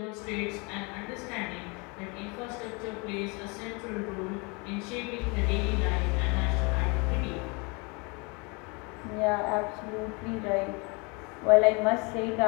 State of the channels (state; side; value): quieter; right; 30.1 dB